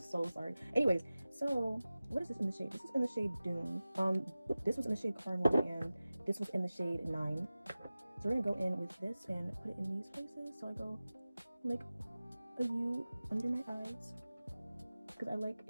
sorry. Anyways, so what is this in the shade? This is in the shade Dune. This was in the shade Caramel, and this was in the shade 9. So we're gonna go in with this and put it in these places. So I go like a U under my eyes because I like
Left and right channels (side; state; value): both; inverted; correlation -0.97